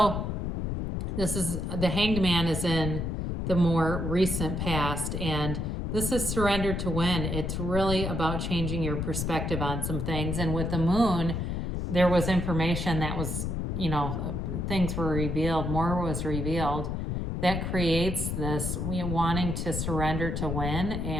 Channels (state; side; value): noise; left; rumble, 2 dB below the sound